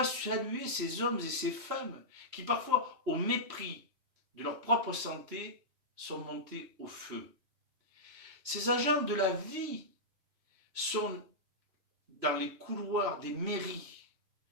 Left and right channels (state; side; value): late; left; 3.1 ms